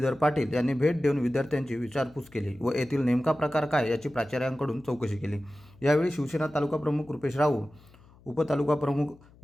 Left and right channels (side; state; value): left; noise; hum, 26 dB below the sound